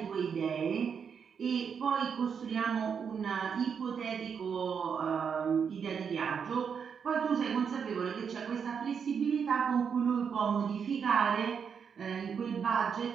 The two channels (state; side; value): quieter; left; 6.8 dB